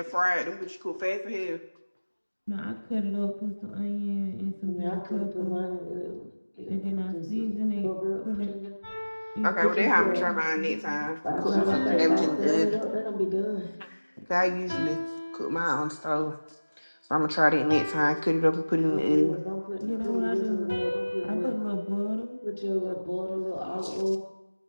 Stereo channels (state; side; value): inverted; both; correlation -1.00